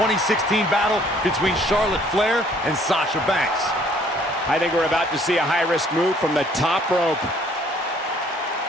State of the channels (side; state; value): both; normal; correlation 0.60